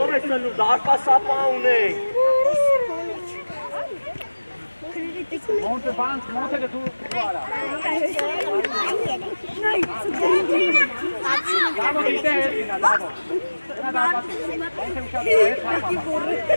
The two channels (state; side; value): inverted; both; correlation -1.00